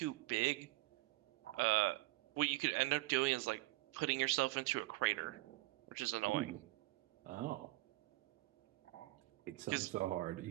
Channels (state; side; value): quieter; left; 20.1 dB